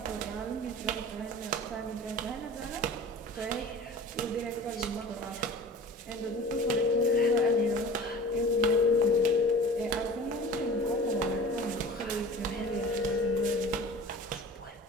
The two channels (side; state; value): both; normal; correlation 0.40